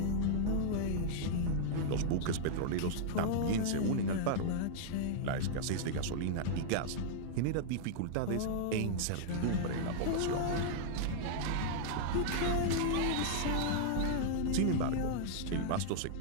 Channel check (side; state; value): both; different; correlation -0.01